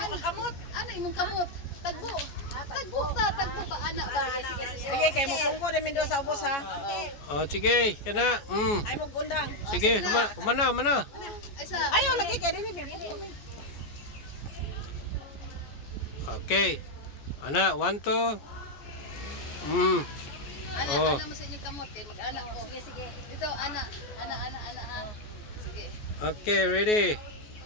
kamot. Ana, imong kamot. Tagbo ba, ana ba? Sige, kay mo pungko din do sa ubos ha. Oh, sige. Kana. Ay mo gundang. Sige, humana. Ay sa. Ayaw lagi kay din ni pungko. Okay. Ana, 1, 2. Ana, Oh. ana mo sa inyong kamot kay mag-ana ko. Sige. Dito, ana ha. Sige. Okay, ready.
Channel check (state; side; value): late; right; 14 ms